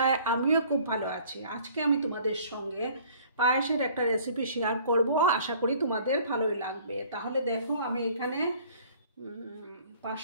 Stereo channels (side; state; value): both; inverted; correlation -0.54